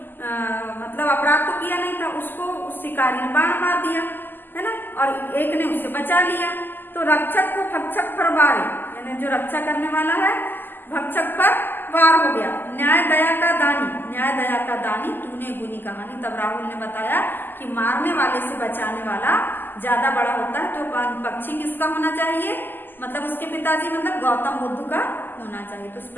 मतलब अपराध तो किया नहीं था, उसको उस शिकारी ने बाण मार दिया, है ना, और एक ने उसे बचा लिया। तो रक्षक को भक्षक पर वारे, यानी जो रक्षा करने वाला है भक्षक पर वार हो गया। न्याय दया का दानी, न्याय दया का दानी तूने गुनी कहानी। तब राहुल ने बताया कि मारने वाले से बचाने वाला ज्यादा बड़ा होता है, तो पक्षी किसका होना चाहिए, मतलब उसके पिताजी मतलब गौतम बुद्ध का होना चाहिए। तो इस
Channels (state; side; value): late; right; 0.092 ms